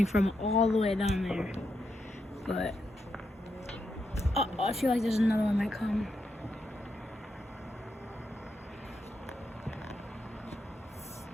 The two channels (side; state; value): both; normal; correlation 0.83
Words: from all the way down there. But I feel like there's another one might come.